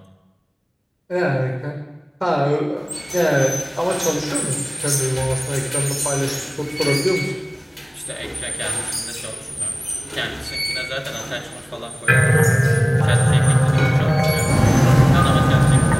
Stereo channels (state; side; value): identical; both; correlation 1.00